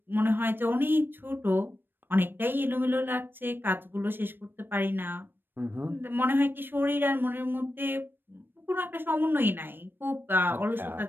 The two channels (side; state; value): left; late; 0.097 ms